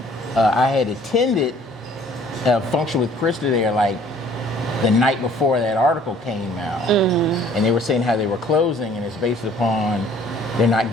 I had attended a function with Krista there, like, the night before that article came out. Mm-hmm. And they were saying how they were closing, and it's based upon they're not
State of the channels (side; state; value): both; normal; correlation 0.56